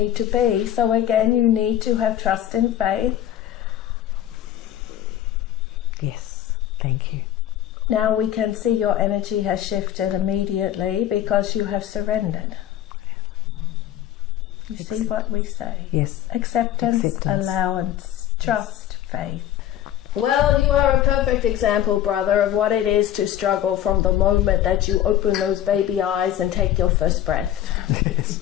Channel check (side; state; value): right; quieter; 11.6 dB